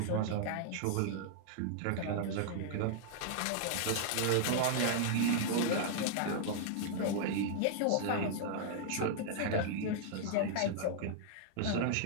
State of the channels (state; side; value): different; both; correlation -0.01